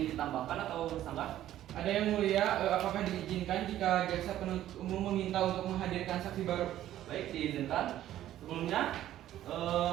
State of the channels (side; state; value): left; quieter; 12.8 dB